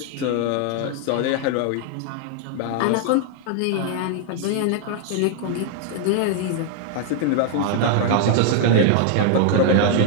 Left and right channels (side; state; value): both; different; correlation 0.00